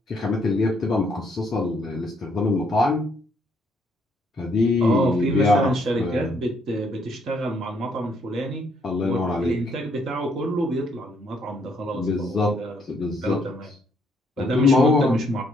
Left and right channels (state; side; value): normal; both; correlation 0.70